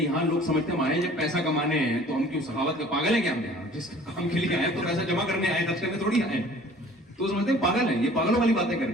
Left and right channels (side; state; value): both; normal; correlation 0.50